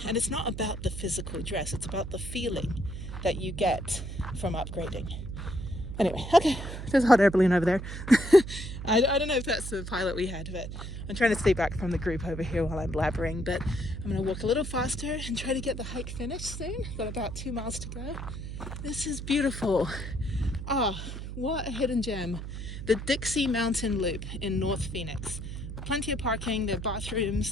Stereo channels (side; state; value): right; noise; hum, 7 dB below the sound